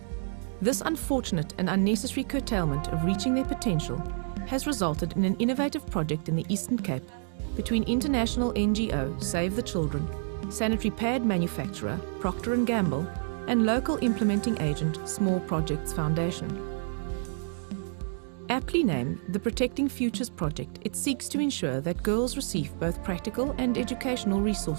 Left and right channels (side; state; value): left; silent; digital silence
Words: This unfortunate and unnecessary curtailment of reaching their potential has resulted in an innovative project in the Eastern Cape between international NGO Save the Children, sanitary pad manufacturer Procter & Gamble, and local implementing agent Small Projects Foundation. Aptly named the Protecting Futures Project, it seeks to ensure that girls receive both practical and educational